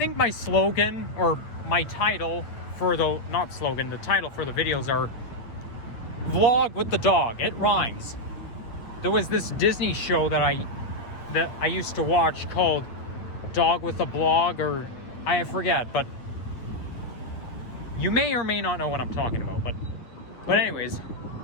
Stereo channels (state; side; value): late; right; 8.9 ms